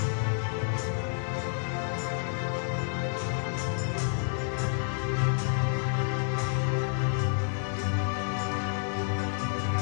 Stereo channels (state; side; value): silent; right; digital silence